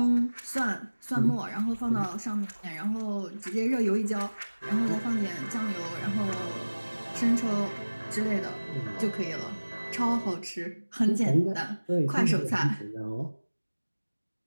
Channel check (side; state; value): both; inverted; correlation -1.00